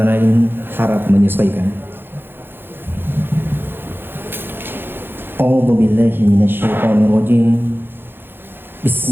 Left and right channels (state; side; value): late; left; 0.10 ms